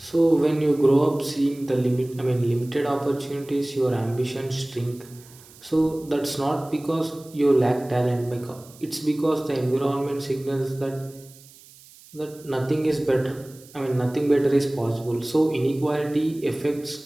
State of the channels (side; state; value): right; noise; hiss, 23 dB below the sound